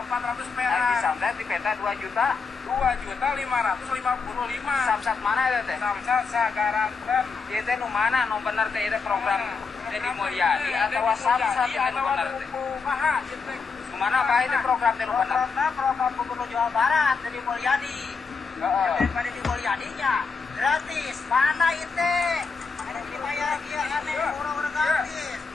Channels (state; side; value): quieter; right; 5.0 dB